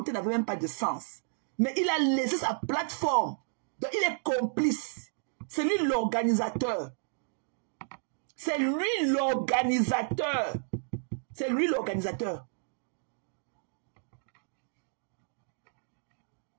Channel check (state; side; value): silent; left; digital silence